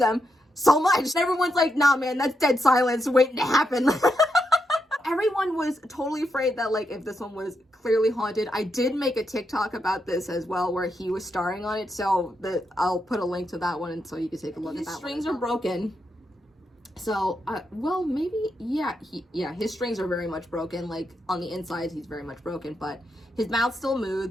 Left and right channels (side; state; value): both; normal; correlation 0.83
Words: so much. And everyone's like, nah man, that's dead silence waiting to happen. Everyone was totally afraid that like if this one was clearly haunted. I did make a TikTok about this as well where he was starring on it, so I'll put a link to that one and so you can take a look at that. His strings are broken. So, well, maybe, yeah, his strings are very much broken. Like, on the inside, he's very much broken, but his mouth still